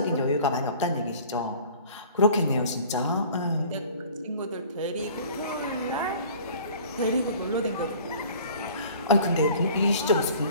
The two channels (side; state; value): both; inverted; correlation -0.47